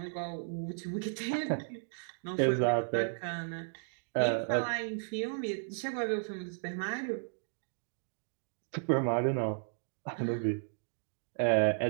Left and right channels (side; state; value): left; silent; digital silence